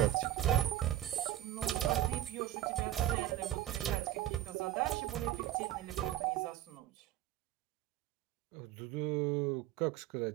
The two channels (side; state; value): left; quieter; 12.9 dB